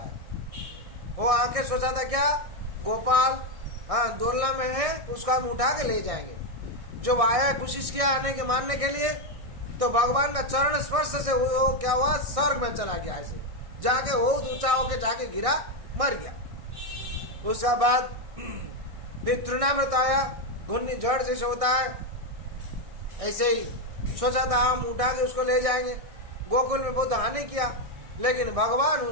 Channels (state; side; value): late; left; 1.6 ms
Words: वो आके सोचा था क्या, गोपाल हाँ डोलना में है, उसको हम उठा के ले जाएंगे। जब आया कोशिश किया आने के मारने के लिए, तो भगवान का चरण स्पर्श से वो क्या हुआ, स्वर्ग में चला गया। ऐसे जाके बहुत ऊंचा होके जाके गिरा, मर गया। उसके बाद फिर तृणामृत आया, घुन्नी जड़ जैसे होता है, ऐसे ही सोचा था हम उठा के उसको ले जाएंगे। गोकुल में बहुत हानि किया, लेकिन भगवान